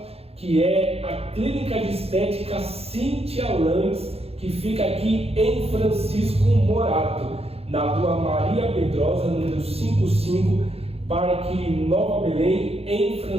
que é a Clínica de Estética Cíntia Lantes, que fica aqui em Francisco Morato, na rua Maria Pedrosa, número 55, Parque Nova Belém, em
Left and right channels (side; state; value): left; late; 0.29 ms